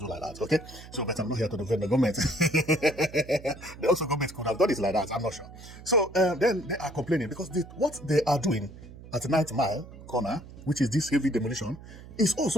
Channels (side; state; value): right; noise; hum, 16 dB below the sound